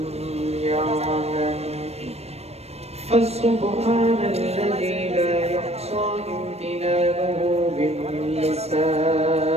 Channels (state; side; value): late; left; 0.31 ms